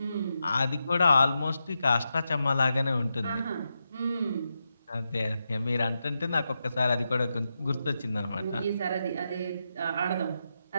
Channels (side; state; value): both; inverted; correlation -0.87